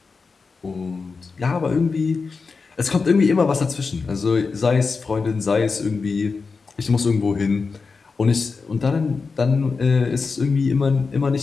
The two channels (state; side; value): quieter; right; 4.6 dB